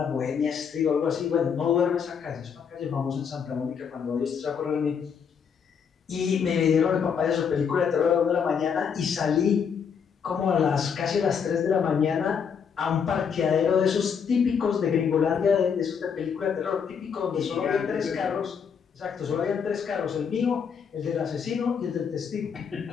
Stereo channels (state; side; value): quieter; right; 6.8 dB